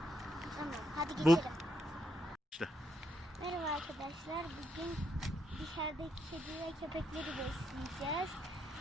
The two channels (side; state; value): both; normal; correlation 0.78